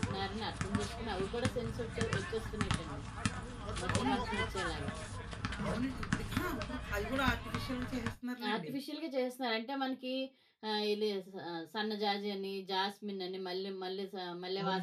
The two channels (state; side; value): identical; both; correlation 1.00